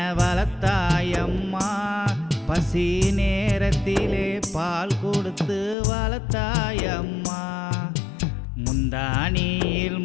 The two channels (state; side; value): drops out; right; at 5.8 s